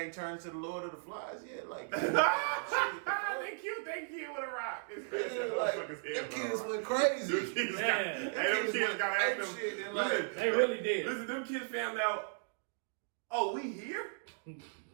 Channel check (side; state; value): left; silent; digital silence